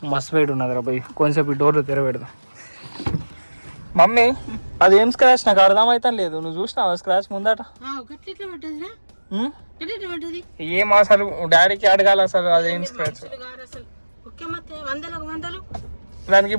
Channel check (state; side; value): inverted; both; correlation -1.00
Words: మస్తు వెయిట్ ఉన్నది రా పోయి. కొంచెం ఈ డోర్లు తెరబెడదాం. మమ్మీ అదేం స్క్రాచ్ నాకు అర్థమైతే లేదు. నువ్వు చూసినావా స్క్రాచ్ ముందట? ఏం అసలు డాడీకి అడగాలి అసలు అదేం స్క్రాచ్. దానికి